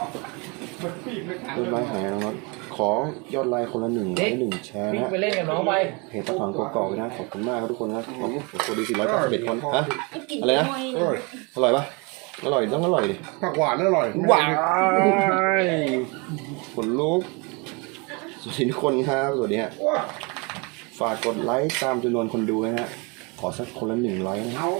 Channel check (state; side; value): quieter; left; 30.3 dB